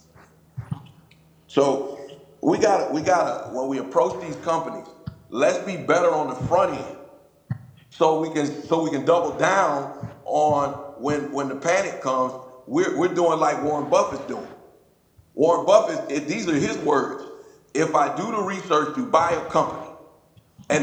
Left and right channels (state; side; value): identical; both; correlation 1.00